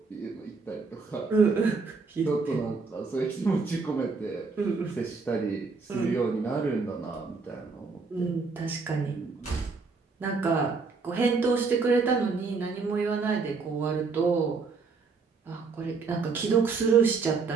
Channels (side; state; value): left; quieter; 4.5 dB